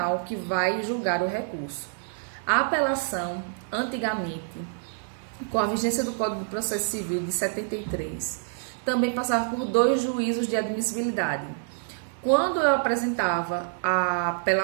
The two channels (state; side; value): silent; left; digital silence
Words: que vai julgar o recurso. A apelação, antigamente, com a vigência do Código de Processo Civil de 73, também passava por 2 juízos de admissibilidade. Quando eu apresentava a